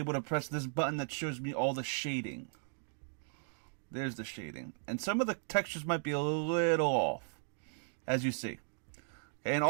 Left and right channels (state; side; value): silent; left; digital silence